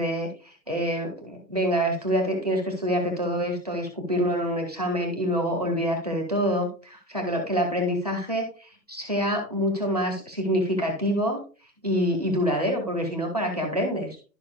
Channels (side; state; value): both; normal; correlation 0.29